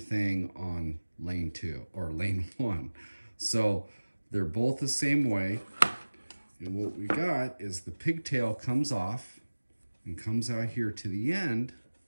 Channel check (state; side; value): inverted; both; correlation -1.00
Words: on lane 2 or lane 1. So they're both the same way. And what we got is the pigtail comes off and comes out here to the end.